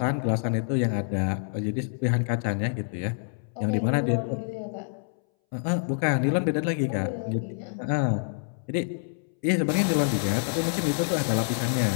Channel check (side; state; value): right; silent; 60 dB below the other